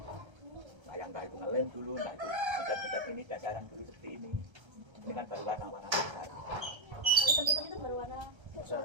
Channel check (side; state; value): left; late; 1.3 ms